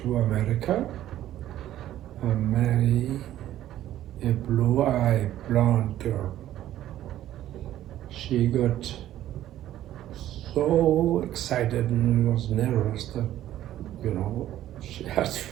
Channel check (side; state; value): left; quieter; 12.9 dB